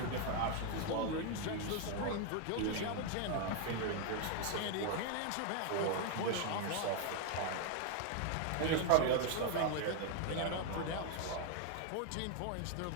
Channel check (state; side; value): different; both; correlation 0.00